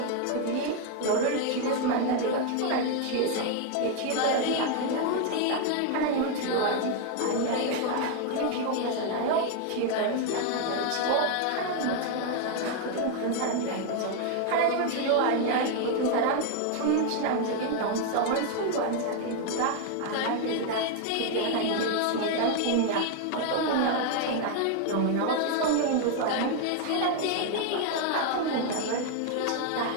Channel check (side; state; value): both; different; correlation 0.00